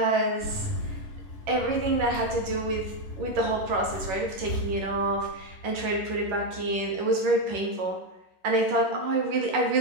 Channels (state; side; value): late; left; 10 ms